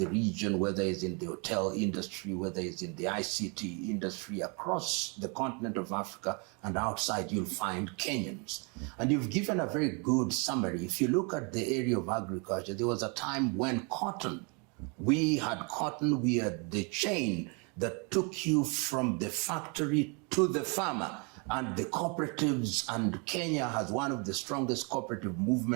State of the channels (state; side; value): quieter; left; 33.3 dB